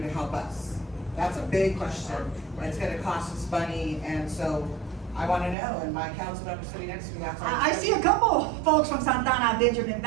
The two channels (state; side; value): drops out; left; at 5.6 s